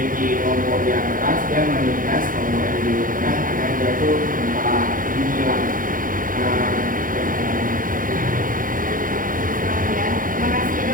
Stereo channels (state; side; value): late; left; 0.40 ms